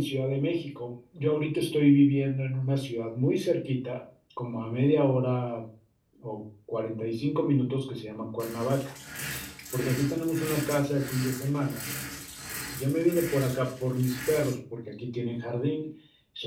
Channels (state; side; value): identical; both; correlation 1.00